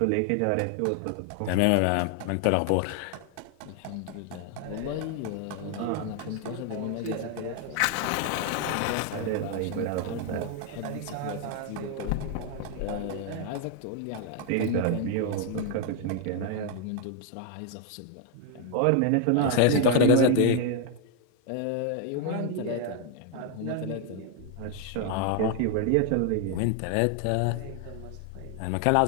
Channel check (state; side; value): different; both; correlation 0.00